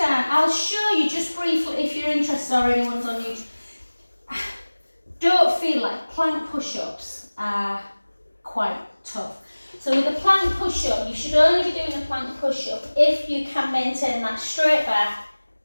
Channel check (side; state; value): both; inverted; correlation -1.00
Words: I'll show you just briefly if you're interested or anyone's on YouTube. Don't feel like plank push-ups are quite tough. So with a plank push-up, you should only be doing a plank push-up if you can maintain that straight back,